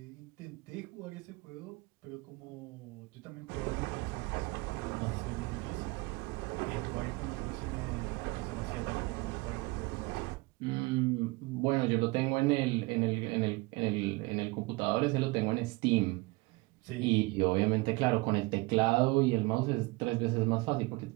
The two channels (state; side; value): quieter; left; 24.1 dB